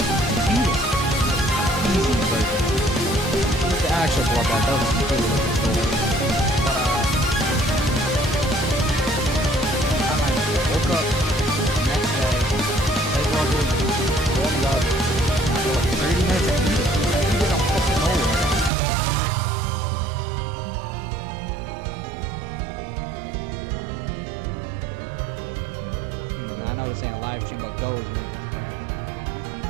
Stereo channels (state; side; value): drops out; left; at 18.7 s